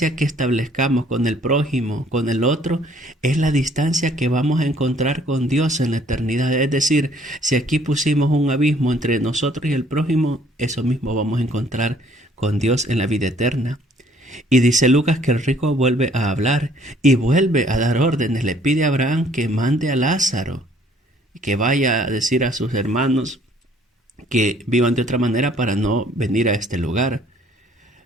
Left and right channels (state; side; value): normal; both; correlation 0.60